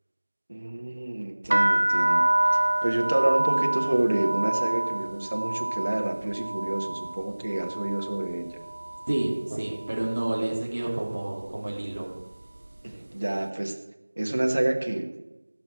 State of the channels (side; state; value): both; inverted; correlation -1.00